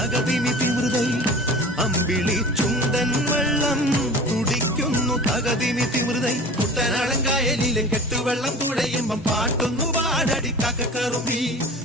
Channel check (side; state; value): both; normal; correlation 0.39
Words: തിമൃതൈ അമ്പിളി ചുണ്ടൻ വെള്ളം തുടിക്കുന്നു തകതിനി തിമൃതൈ കുട്ടനാടൻ കായലിലെ കെട്ടുവെള്ളം തുഴയുമ്പം പാട്ടൊന്നു പാടടി കാക്കക്കറുമ്പി